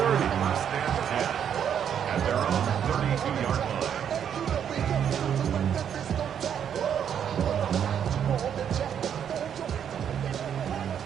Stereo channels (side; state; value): left; quieter; 8.7 dB